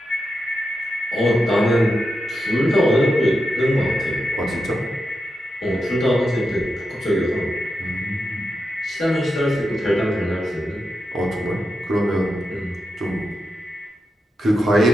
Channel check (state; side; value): normal; both; correlation 0.88